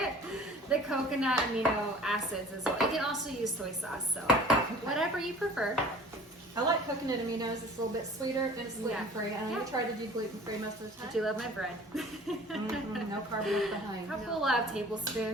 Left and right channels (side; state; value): both; normal; correlation 0.46